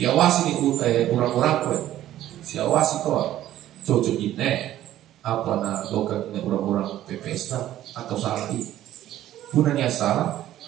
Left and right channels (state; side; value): quieter; left; 13.1 dB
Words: diawasi nih orang-orang kue, siawasi kau cocok ini apa na lokat ini orang-orang PPS atau salah ini punanya salah